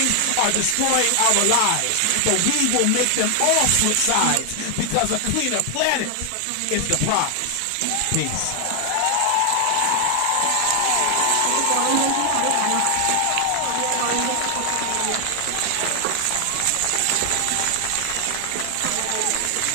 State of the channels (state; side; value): different; both; correlation 0.00